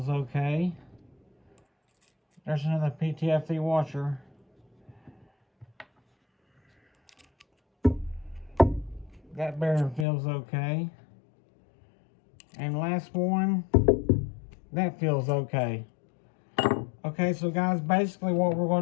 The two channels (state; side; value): drops out; right; at 10.1 s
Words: okay. There's another PTFE washer. That bearing feels okay. And last one, that feels okay. Okay, so guys, basically what we're